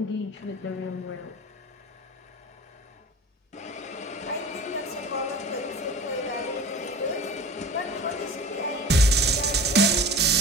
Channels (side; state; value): both; normal; correlation 0.37